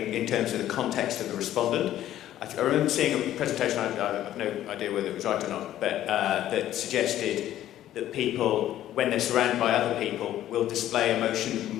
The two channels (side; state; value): right; quieter; 12.6 dB